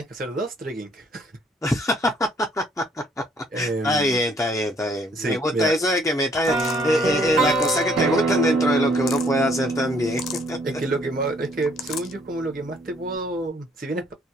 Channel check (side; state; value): both; normal; correlation 0.64